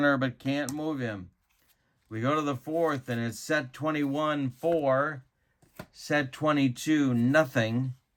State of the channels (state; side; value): identical; both; correlation 1.00